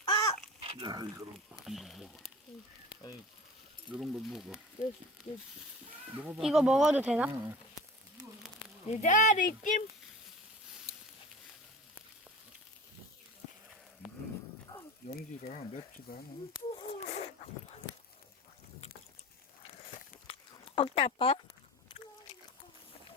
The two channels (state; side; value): normal; both; correlation 0.36